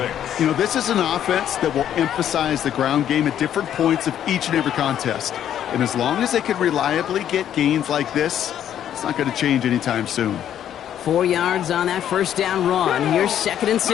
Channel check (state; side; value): quieter; right; 10.3 dB